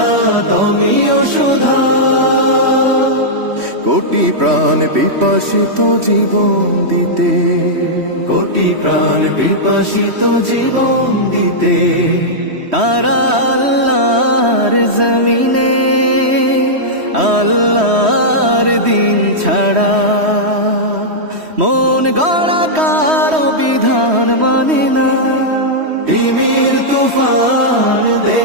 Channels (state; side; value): late; left; 3.1 ms